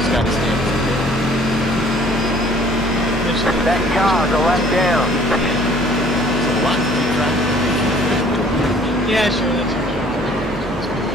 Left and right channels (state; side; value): normal; both; correlation 0.57